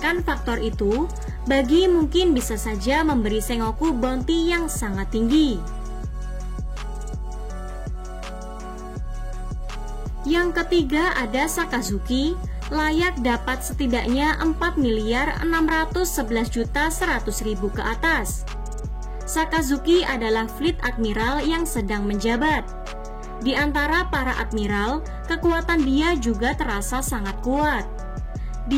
faktor itu, Buggy mungkin bisa saja memberi Sengoku bounty yang sangat tinggi. Yang ketiga ada Sakazuki, layak dapat setidaknya 4.611.100.000 ke atas. Sakazuki adalah Fleet Admiral yang sedang menjabat. Di antara para admiral, kekuatan dia juga terasa sangat kuat.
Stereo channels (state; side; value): identical; both; correlation 1.00